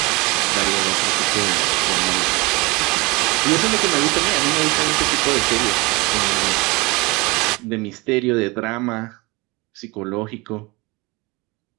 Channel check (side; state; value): left; quieter; 25.1 dB